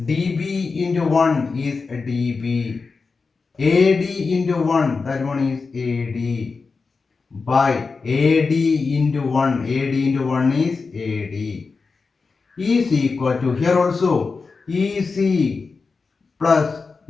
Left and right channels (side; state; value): right; quieter; 4.5 dB